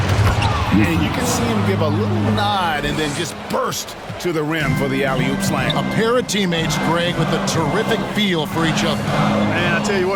you can see him give a little nod and then just burst to the rim for the alley-oop slam. A pair of teammates, Greg, with a terrific feel for each other. Man, I tell you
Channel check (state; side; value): identical; both; correlation 1.00